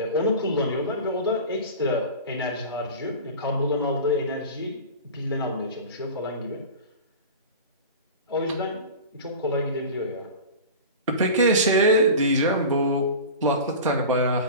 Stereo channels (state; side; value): inverted; both; correlation -0.33